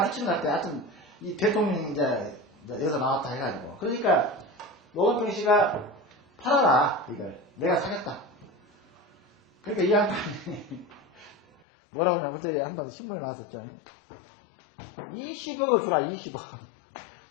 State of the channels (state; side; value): drops out; right; at 11.6 s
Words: 끼치는 것 같아. 하여튼 이 대통령이 이제 여기서 나왔다 해가지고 그러니까 노건평 씨가 팔아라 이걸 내가 사겠다. 그러니까 이 양반이 뭐라고 하면 그때 한번 신문에 나왔었죠. 20억을 주라 20억.